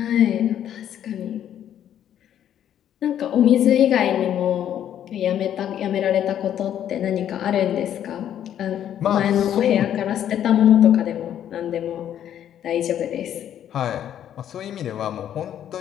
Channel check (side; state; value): right; quieter; 10.4 dB